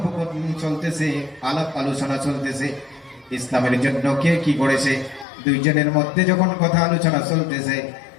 চলতেছে, আলাপ আলোচনা চলতেছে, ইসলামের জন্য কে কি করেছে, দুইজনের মধ্যে যখন কথা আলোচনা চলতেছে,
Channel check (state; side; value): drops out; right; at 5.2 s